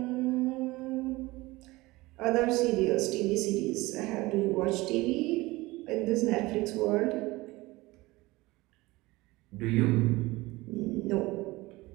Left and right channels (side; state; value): left; quieter; 20.7 dB